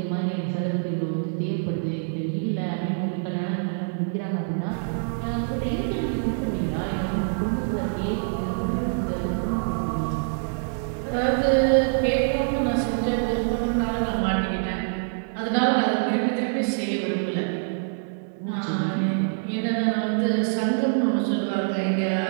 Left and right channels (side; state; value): left; silent; digital silence